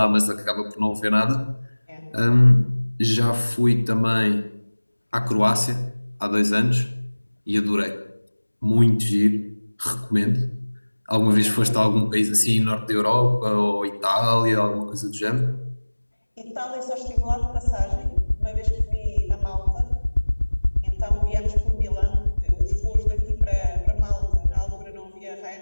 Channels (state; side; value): inverted; both; correlation -1.00